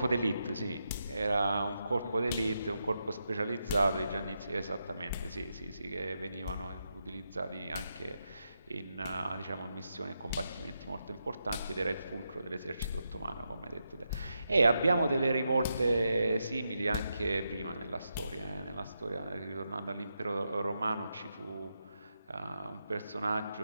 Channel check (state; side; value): inverted; both; correlation -0.85